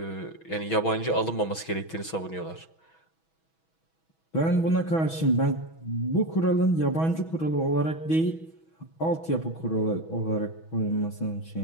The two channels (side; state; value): right; late; 6.2 ms